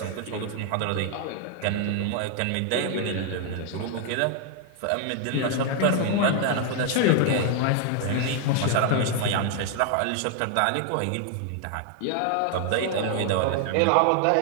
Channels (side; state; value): both; different; correlation 0.00